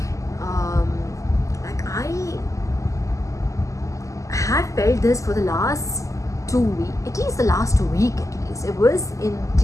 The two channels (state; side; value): late; right; 0.16 ms